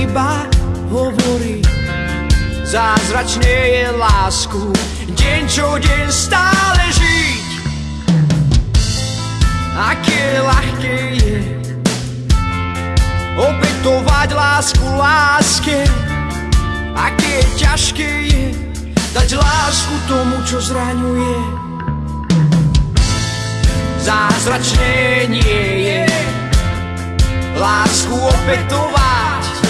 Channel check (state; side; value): identical; both; correlation 1.00